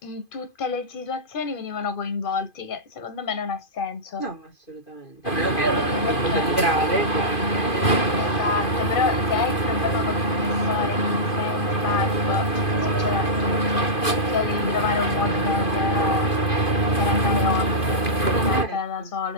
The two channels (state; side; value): late; right; 2.5 ms